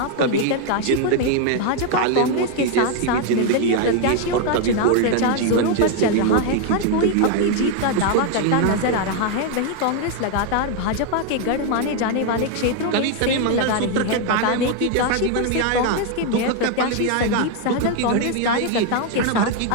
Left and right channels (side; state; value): both; different; correlation 0.01